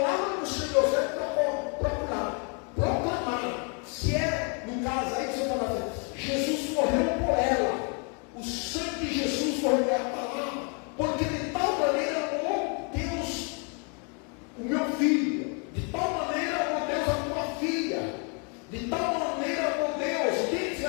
do Senhor, você vai procurar, proclamar. Se é, no caso aí, você vai falar, Jesus morreu por ela. O sangue de Jesus foi a palavra, porque de tal maneira amou Deus o meu filho, de tal maneira amou Deus a tua filha, de tal maneira amou Deus. Deus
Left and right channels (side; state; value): right; quieter; 36.8 dB